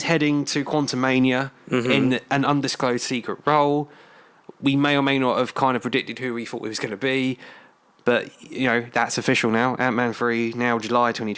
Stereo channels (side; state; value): both; identical; correlation 1.00